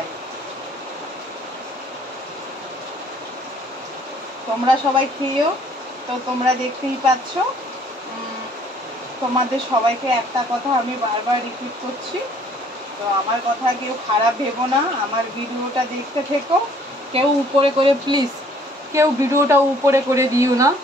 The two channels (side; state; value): both; normal; correlation 0.59